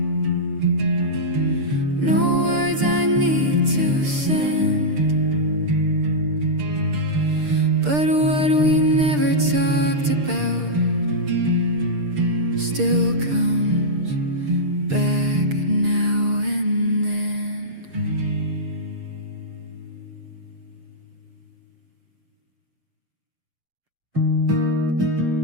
no words I need to send. But what we never talked about still comes back now and then.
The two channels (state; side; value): late; left; 6.7 ms